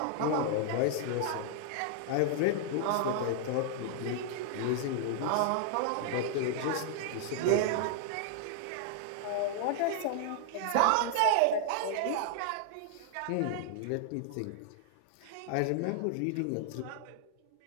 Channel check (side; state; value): both; different; correlation -0.01